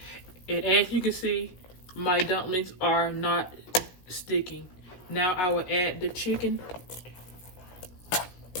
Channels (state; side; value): late; right; 16 ms